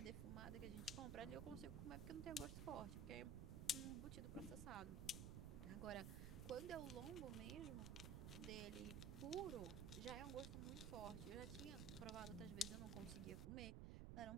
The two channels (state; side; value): noise; right; rumble, 2 dB below the sound